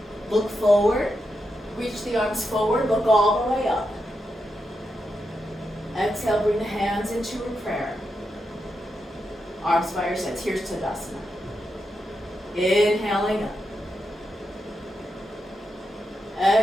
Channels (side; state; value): both; normal; correlation 0.86